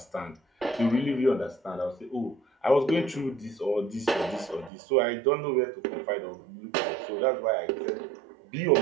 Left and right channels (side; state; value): left; drops out; at 4.7 s